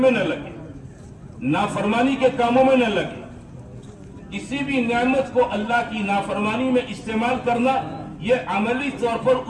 میں نہ لگے، نافرمانی کے کاموں میں نہ لگے۔ کسی بھی نعمت کو اللہ کی نافرمانی میں استعمال کرنا یہ عملی طور پر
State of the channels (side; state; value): both; identical; correlation 1.00